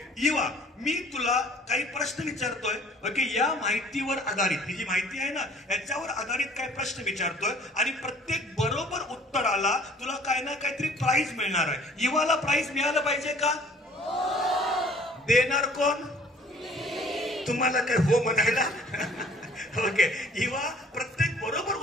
Iva, मी तुला काही प्रश्न विचारतोय. ओके, या माहितीवर आधारित, ही जी माहिती आहे ना याच्यावर आधारित काही प्रश्न विचारतोय आणि प्रत्येक बरोबर उत्तराला तुला काय ना काहीतरी प्राइज मिळणार आहे. इवाला प्राइज मिळालं पाहिजे का? देणार कोण? तुम्हाला काय हो म्हणायला? ओके, इवा, प्रत्येक बरोबर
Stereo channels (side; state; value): both; normal; correlation 0.54